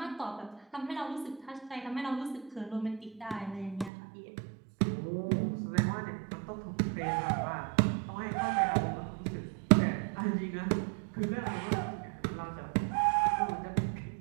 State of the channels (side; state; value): left; drops out; at 3.9 s